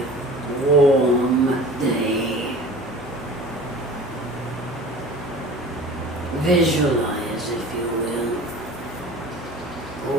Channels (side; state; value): both; normal; correlation 0.41